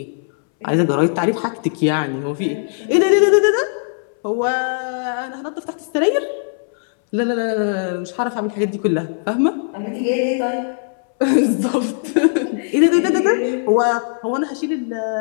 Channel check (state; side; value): silent; right; 64 dB below the other